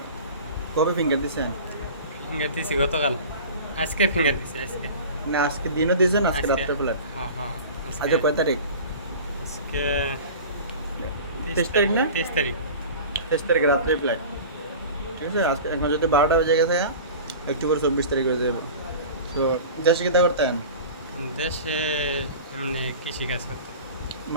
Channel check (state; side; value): inverted; both; correlation -0.37